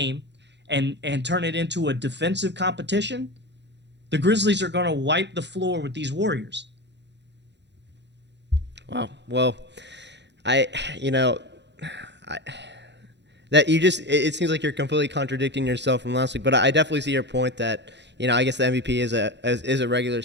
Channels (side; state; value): left; late; 0.51 ms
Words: and turn it into a defensive competition, the Grizzlies are going to wipe the floor with these Warriors. Wow. Well, it seems like you're completely contradicting yourself from last week, but I definitely see your point that, I guess the MVP is a regular